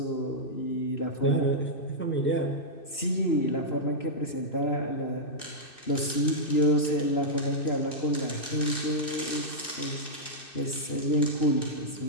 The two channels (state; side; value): late; right; 2.6 ms